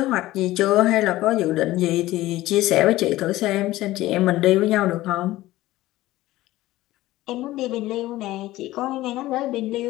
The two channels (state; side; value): quieter; right; 16.7 dB